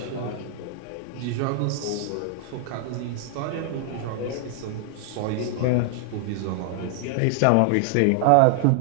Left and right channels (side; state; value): both; different; correlation 0.00